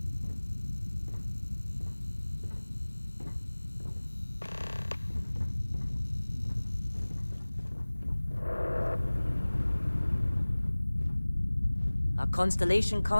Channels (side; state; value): both; inverted; correlation -1.00